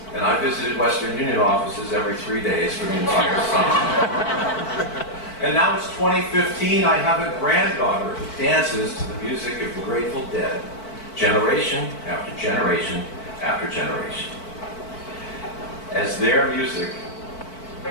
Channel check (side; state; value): right; late; 4.5 ms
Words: and I visited Western Union offices every 3 days for the entire summer. And now it's 2015, I have a granddaughter who dances to the music of the Grateful Dead, generation after generation after generation. As their music